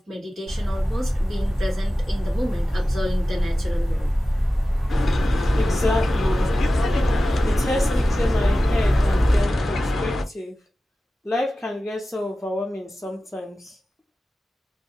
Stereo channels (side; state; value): both; normal; correlation 0.95